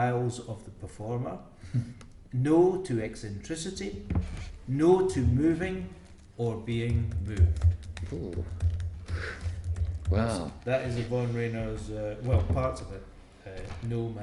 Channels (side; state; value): both; identical; correlation 1.00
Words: of the performer, no to eccentricity, no to moving or being moved. Ooh. Wow. That is Yvonne Rayner's, parts of it, No